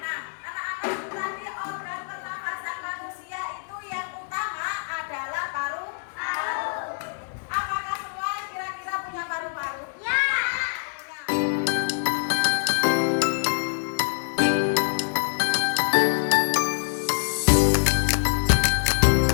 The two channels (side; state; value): right; silent; 59 dB below the other